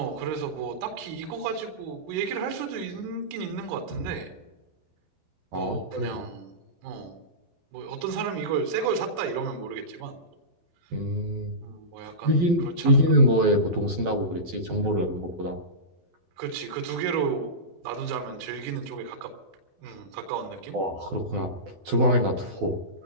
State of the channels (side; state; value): left; late; 12 ms